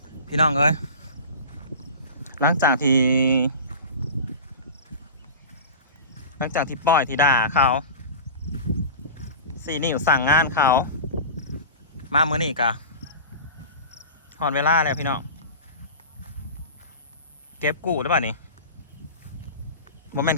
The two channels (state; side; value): inverted; both; correlation -0.33